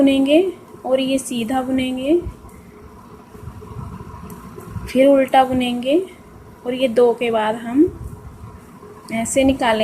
और ये सीधा बुनेंगे, फिर उल्टा बुनेंगे और ये दो के बाद हम ऐसे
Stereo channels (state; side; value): identical; both; correlation 1.00